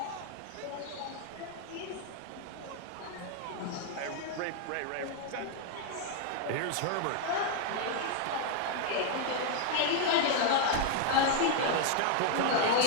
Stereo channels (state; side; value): different; both; correlation 0.00